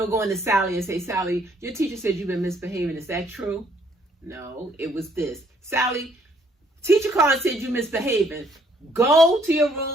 to Sally and say, Sally, your teacher said you've been misbehaving. Is that true? No, it was this. Sally, teacher called and said you misbehaving. Go to your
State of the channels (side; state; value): both; normal; correlation 0.66